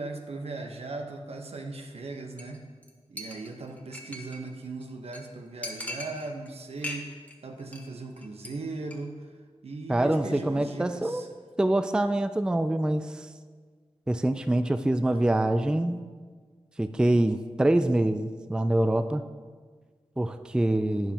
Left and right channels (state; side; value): normal; both; correlation 0.95